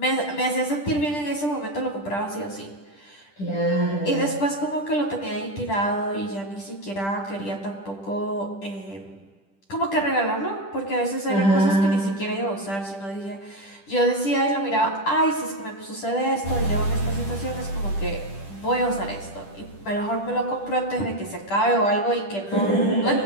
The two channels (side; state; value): right; late; 10 ms